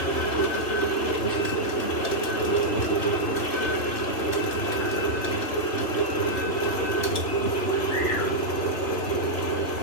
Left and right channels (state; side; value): late; right; 3.2 ms